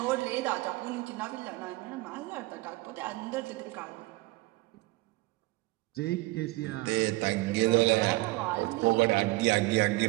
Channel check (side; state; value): left; quieter; 20.9 dB